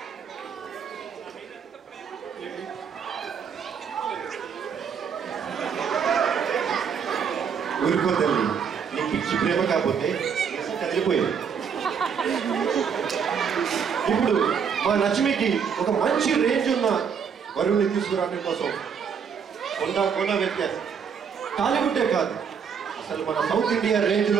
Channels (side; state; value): left; quieter; 6.9 dB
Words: ఊరుకో తల్లి, నీ పిచ్చి ప్రేమ కాకపోతే కదిలిపోయింది. ఇప్పుడు మా లక్ష్మికి ఒక మంచి రేంజ్ ఉన్న వరుణ్ణి తీసుకురావడం కోసం కొండ వ్యత్యాసం టాలీవుడ్డే కాదు, అసలు మన సౌత్ ఇండియా రేంజ్